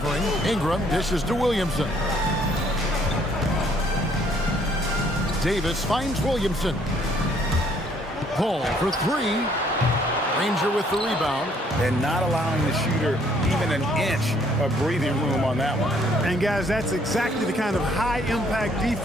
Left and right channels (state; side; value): normal; both; correlation 0.64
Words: Ingram dishes to Williamson. Davis finds Williamson. Paul for 3. Granger with the rebound. And not allowing the shooter even an inch of breathing room on that one. And guys, that's exactly the kind of high impact